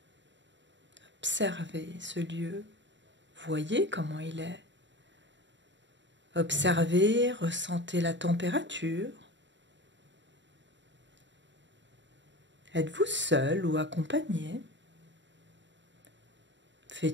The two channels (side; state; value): left; late; 0.53 ms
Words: Observez ce lieu. Voyez comment il est. Observez, ressentez la température. Êtes-vous seul ou accompagné?